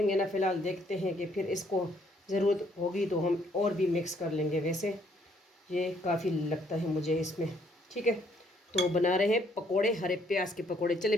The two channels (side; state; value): both; normal; correlation 0.67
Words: ना, फ़िलहाल देखते हैं कि फिर इसको ज़रूरत होगी तो हम और भी मिक्स कर लेंगे। वैसे ये काफ़ी लगता है मुझे इसमें, ठीक है। तो बना रहे हैं पकोड़े, हरे प्याज के पकोड़े। चले